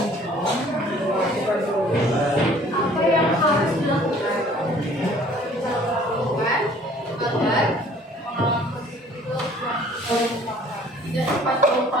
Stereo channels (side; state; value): both; normal; correlation 0.54